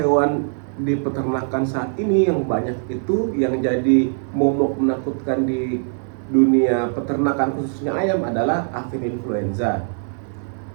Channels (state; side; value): silent; left; 57 dB below the other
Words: di peternakan saat ini yang banyak itu yang jadi momok menakutkan di dunia peternakan khususnya ayam adalah avian influenza.